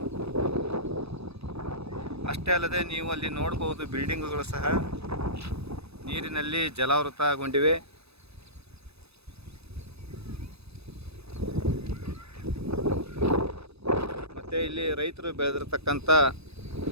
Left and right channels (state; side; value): late; left; 0.79 ms